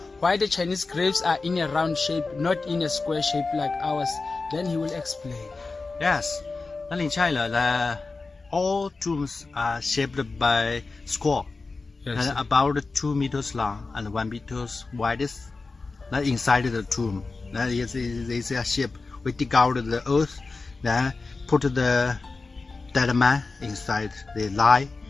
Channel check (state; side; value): quieter; right; 3.9 dB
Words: why the Chinese graves are in a round shape, not in a square shape like ours, then he will explain. Yes, and in China, all tombs are shaped by square, Yes. and about 2 meters long and 1 meters wide. Inside the tomb, that is a shape. We dig out the earth, then put the dead man inside. They lie